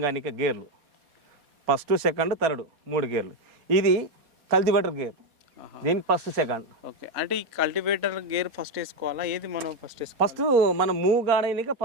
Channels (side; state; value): left; late; 4.2 ms